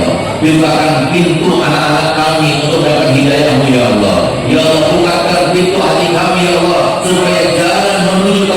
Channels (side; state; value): both; identical; correlation 1.00